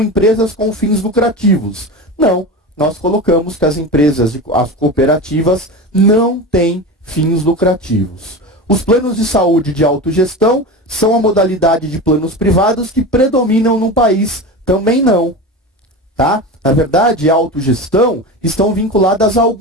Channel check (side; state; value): both; normal; correlation 0.26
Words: com fins lucrativos. Não, nós colocamos que as cooperativas não têm fins lucrativos. Os planos de saúde de autogestão são a modalidade de planos privados que predominam no país. Também não. Tá? Na verdade, a autogestão estão vinculadas a